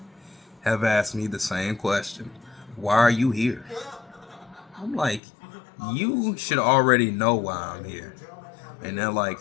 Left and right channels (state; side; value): drops out; right; at 5.2 s